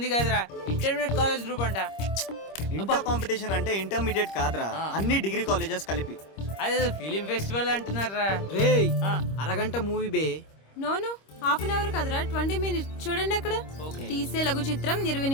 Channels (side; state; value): right; late; 26 ms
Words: కాదురా ఇంటర్మీడియట్ కాలేజ్ గ్రూప్ అంట. ఇంటర్ కాంపిటీషన్ అంటే ఇంటర్మీడియట్ కాదురా, అన్ని డిగ్రీ కాలేజెస్ కలిపి. అదే ఫిలిం ఫెస్టివల్ అంటున్నారా? రే అరగంట మూవీ బే. నోను హాఫ్ అన్ అవర్ కదరా, 20 minutes. చూడండి అక్కడ తీసే లఘు చిత్రం 20